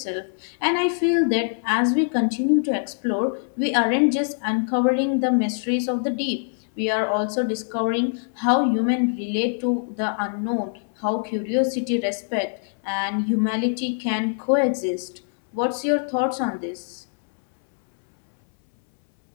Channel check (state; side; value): silent; right; 61 dB below the other